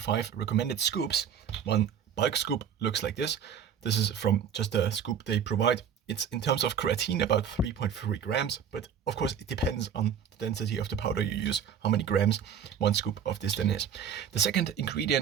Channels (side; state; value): left; quieter; 7.9 dB